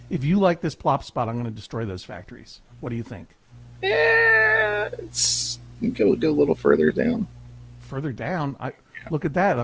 If you like this plop spot, I'm going to destroy those factories. What do you think? Yeah, it's go a little further down. Further down, look at that.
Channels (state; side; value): identical; both; correlation 1.00